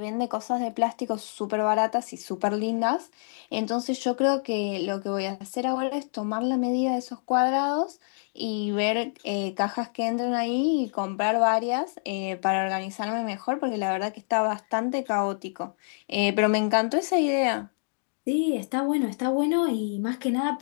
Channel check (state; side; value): silent; right; digital silence